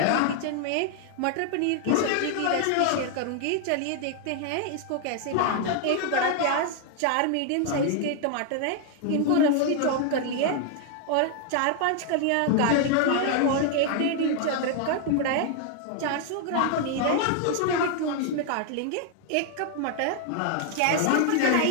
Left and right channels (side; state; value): both; different; correlation 0.00